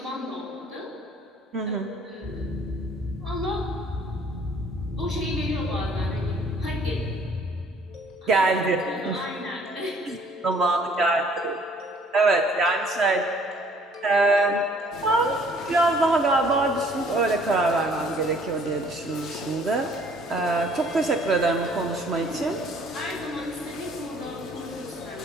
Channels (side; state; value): both; normal; correlation 0.58